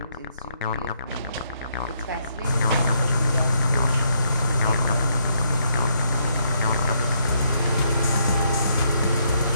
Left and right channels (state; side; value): inverted; both; correlation -0.73